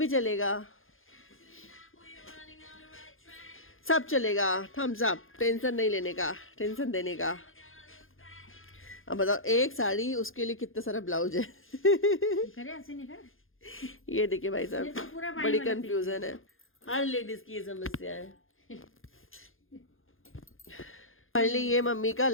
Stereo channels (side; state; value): right; late; 0.59 ms